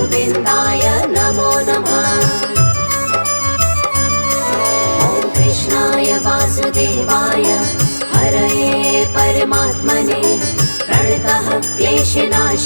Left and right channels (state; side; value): inverted; both; correlation -1.00